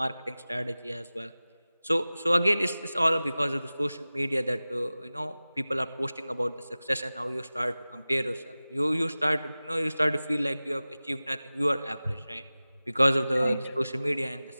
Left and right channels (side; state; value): both; inverted; correlation -0.97